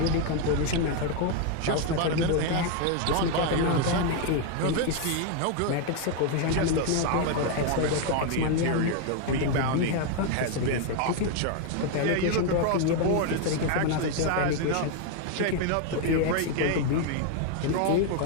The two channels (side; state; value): both; different; correlation 0.01